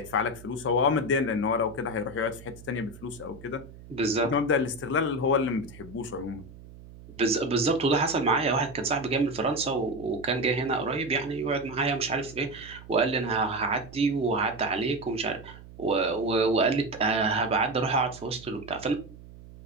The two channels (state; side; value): noise; right; hum, 18 dB below the sound